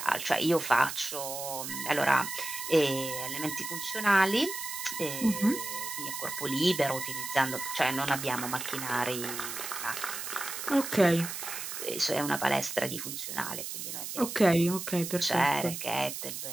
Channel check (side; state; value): right; noise; hiss, 6 dB below the sound